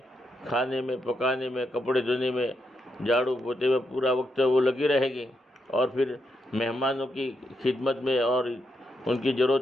کھانے میں، پکانے میں، کپڑے دھونے میں، جھاڑو پوتے میں پورا وقت وہ لگی رہے گی، اور پھر مہمانوں کی خدمت میں اور ان کی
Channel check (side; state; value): both; normal; correlation 0.81